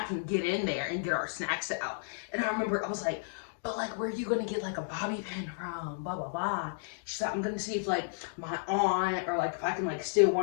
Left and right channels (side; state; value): right; silent; digital silence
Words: can get in there and get our snacks out. And I remember I was like, but like, where are you going to get like a bobby pin from? Blah, blah, blah. She's like, I'm going to see if like my aunt, or like if I can like steal